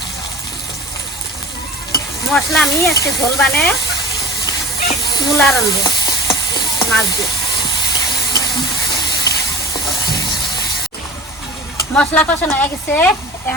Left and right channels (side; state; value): both; normal; correlation 0.38